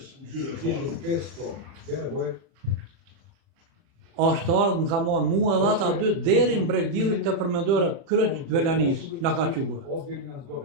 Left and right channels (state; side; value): late; left; 30 ms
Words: gjyre, 1500 bele boje. është ardhur më ka marrë mua dhe ata dy deri në Bregdillit të përmendore kryq Velanis na ka quar. Odveli nas do